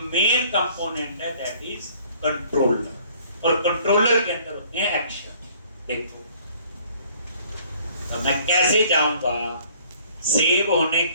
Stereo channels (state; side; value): inverted; both; correlation -0.58